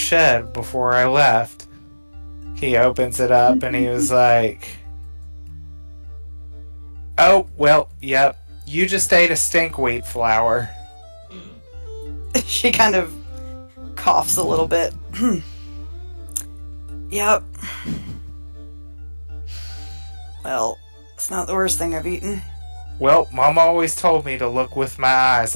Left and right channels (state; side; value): inverted; both; correlation -1.00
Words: before I left. He opens it up and he was like, oh, well, yep, you just ate a stinkweed flower. She kind of coughs a little bit. Yep. Well, it's not the worst thing I've eaten. Well, Mom always told me to look with my eyes